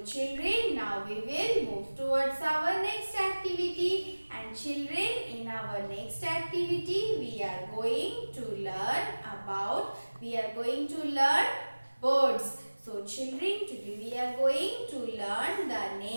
children, now we will move towards our next activity. And children, in our next activity we are going to learn birds. So children, today we are going to learn the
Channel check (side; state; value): both; inverted; correlation -1.00